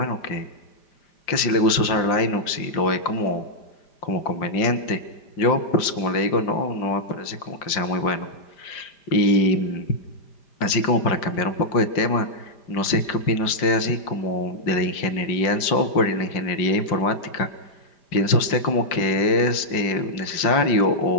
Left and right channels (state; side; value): late; right; 5.6 ms